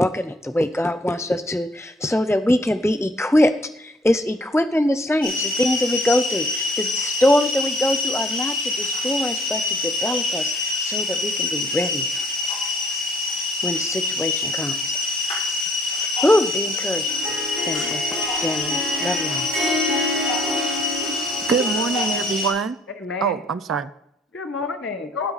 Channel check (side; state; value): both; normal; correlation 0.61